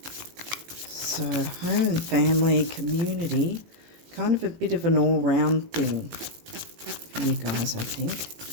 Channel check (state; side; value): late; left; 18 ms